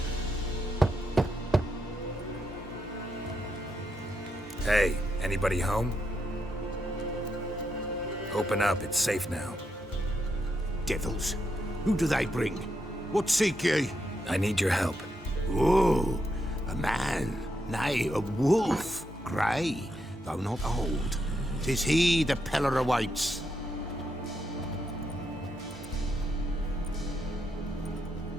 Hey, anybody home? Open up, it's safe now. Devils. Who do they bring? What seek ye? I need your help. Oh, a man, nay, a wolf. Grey, though not old. 'Tis he the Peller awaits.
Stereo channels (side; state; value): both; normal; correlation 0.81